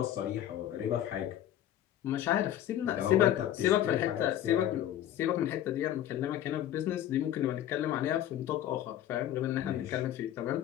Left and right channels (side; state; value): right; quieter; 11.8 dB